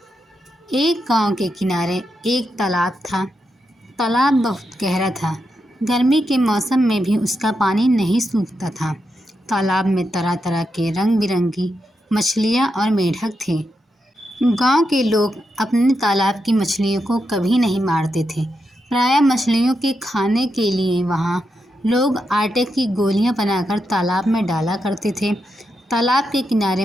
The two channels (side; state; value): both; normal; correlation 0.85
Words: एक गांव के किनारे एक तालाब था। तालाब बहुत गहरा था। गर्मी के मौसम में भी उसका पानी नहीं सूखता था। तालाब में तरह तरह के रंग बिरंगी मछलियां और मेढक थे। गांव के लोग अपने तालाब की मछलियों को कभी नहीं मारते थे। प्रायः मछलियों के खाने के लिए वहां लोग आटे की गोलियां बनाकर तालाब में डाला करते थे। तालाब के किनारे